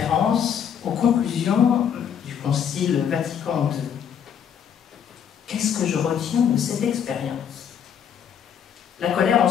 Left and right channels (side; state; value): right; quieter; 8.3 dB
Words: aux conclusions du Concile Vatican II. Qu'est-ce que je retiens de cette expérience? La colère en